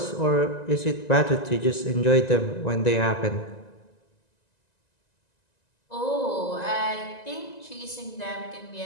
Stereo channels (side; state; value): right; late; 1.9 ms